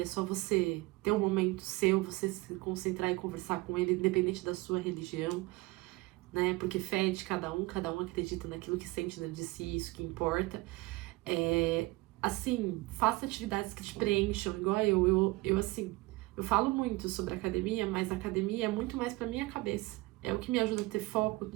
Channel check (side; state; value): left; quieter; 21.9 dB